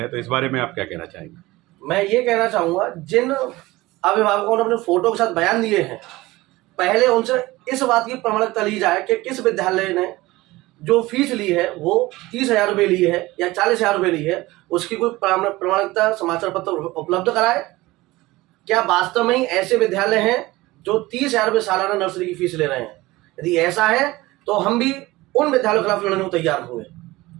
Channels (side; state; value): left; quieter; 19.5 dB